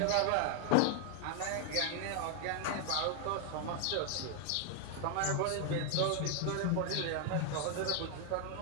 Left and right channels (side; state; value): both; different; correlation 0.00